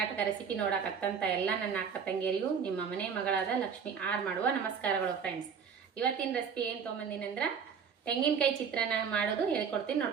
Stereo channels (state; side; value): quieter; left; 6.7 dB